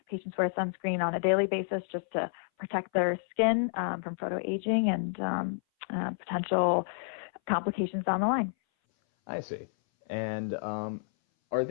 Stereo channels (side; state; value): right; silent; 58 dB below the other